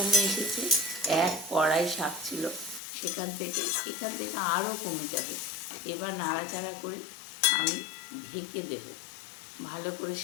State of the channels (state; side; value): drops out; right; at 2.8 s